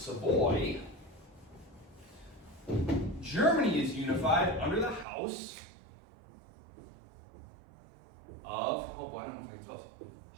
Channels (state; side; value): drops out; left; at 5.1 s